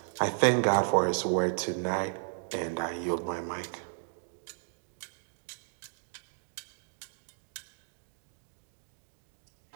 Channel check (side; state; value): left; silent; digital silence